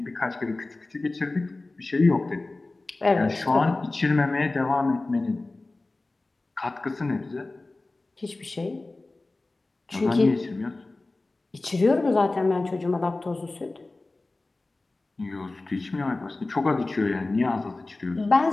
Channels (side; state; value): right; quieter; 3.1 dB